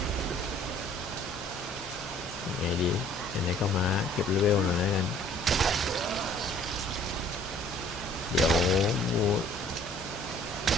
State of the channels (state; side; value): normal; both; correlation 0.56